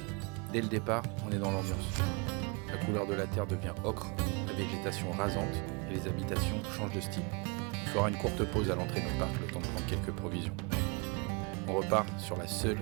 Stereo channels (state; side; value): quieter; left; 31.4 dB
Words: Dès le départ, on est dans l'ambiance. La couleur de la terre devient ocre, la végétation rasante et les habitations changent de style. Il fera une courte pause à l'entrée du parc, le temps de prendre quelques provisions. On repart sur la seule